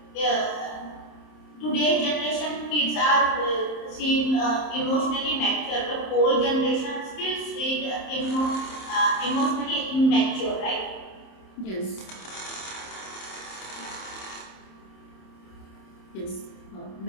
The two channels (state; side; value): late; right; 27 ms